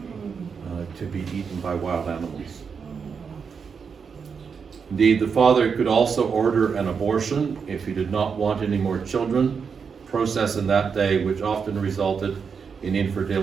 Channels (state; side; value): quieter; left; 6.1 dB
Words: to be eaten by wild animals. Indeed, the father could also order an abortion if he did not want any more children, process in that day which often resulted in